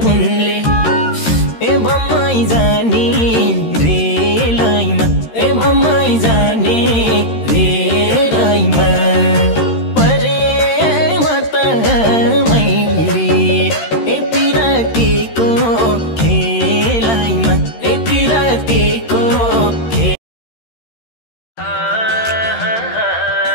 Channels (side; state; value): right; late; 13 ms